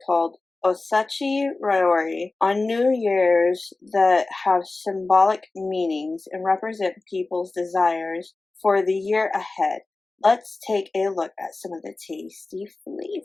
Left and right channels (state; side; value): quieter; right; 3.4 dB